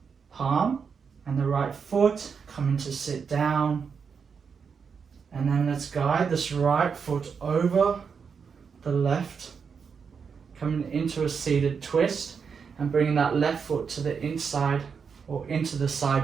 palm and the right foot, coming to sit down. And then let's guide this right foot over the left, coming into a seated twist and bringing that left foot to the inside or into the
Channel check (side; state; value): left; quieter; 6.1 dB